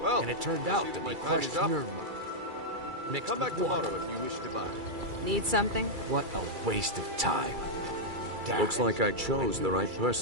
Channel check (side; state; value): left; late; 2.3 ms